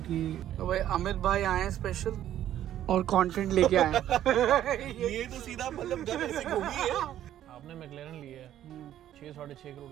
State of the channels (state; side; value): quieter; left; 11.7 dB